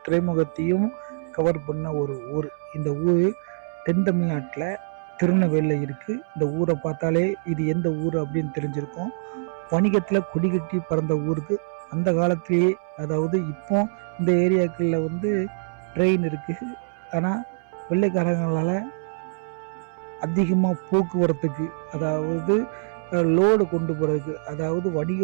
துறைமுகத்தையும் கவர் பண்ண ஒரு ஊர். இந்த ஊர் தென் தமிழ்நாட்டில் திருநெல்வேலியில் இருக்குது. இந்த ஊரை பார்த்தாலே இது எந்த ஊர் அப்படின்னு தெரிஞ்சிருக்கும். வணிகத்தில் கொடி கட்டி பறந்த ஊருக்கு அந்த காலத்திலேயே, அதாவது இப்போ இந்த ஏரியாக்களில் வந்து ட்ரெயின் இருக்குது. ஆனால் வெள்ளைக்காரங்களால் அதிகமாக போக்குவரத்துக்கு, அதாவது லோடு கொண்டு போகிறதுக்கு, அதாவது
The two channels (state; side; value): silent; left; 62 dB below the other